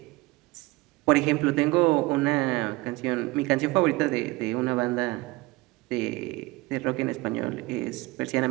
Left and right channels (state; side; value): quieter; left; 22.0 dB